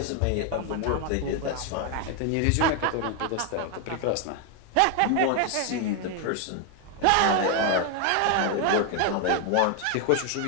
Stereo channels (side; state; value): both; different; correlation 0.01